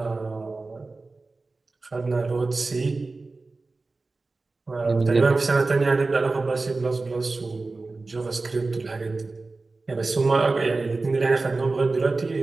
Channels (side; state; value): left; quieter; 3.6 dB